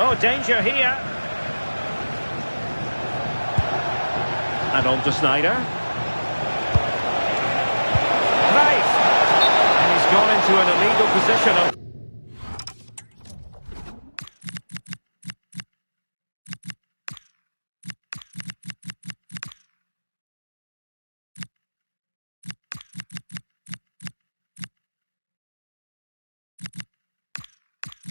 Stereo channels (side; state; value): both; inverted; correlation -1.00